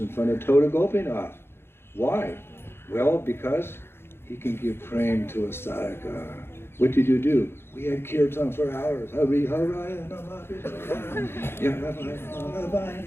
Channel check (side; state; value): right; late; 0.11 ms